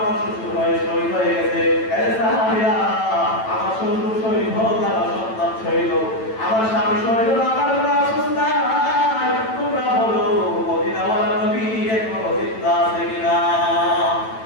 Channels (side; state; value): right; late; 9.0 ms